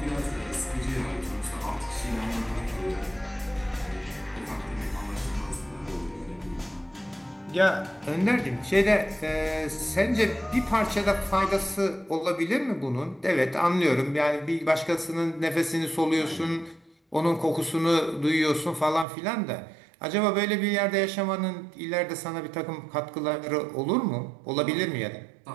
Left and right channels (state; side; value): drops out; left; at 19.1 s